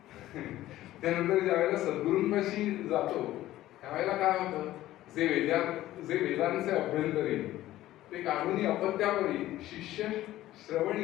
त्यानंतर ज्या वेळेला सद्गुरूंपाशी जातो त्यावेळेला काय होतं, जे वेदांचे अभ्यंतरी ते काढून अपत्यावरी शिष्य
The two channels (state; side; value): quieter; right; 14.8 dB